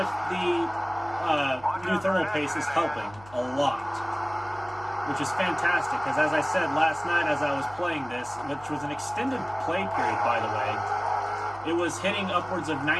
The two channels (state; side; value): noise; right; hum, 21 dB below the sound